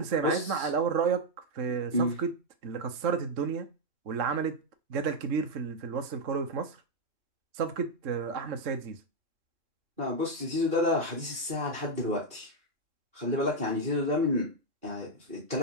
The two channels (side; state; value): left; late; 3.6 ms